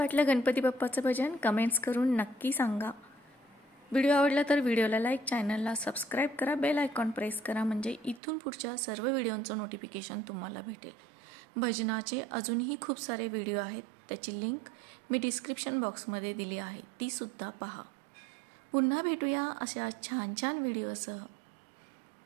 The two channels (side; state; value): left; drops out; at 8.2 s